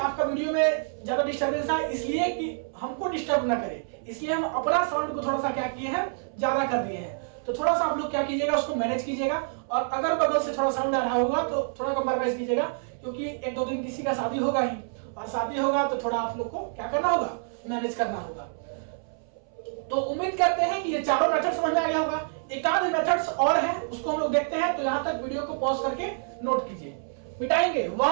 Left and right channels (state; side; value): silent; left; 60 dB below the other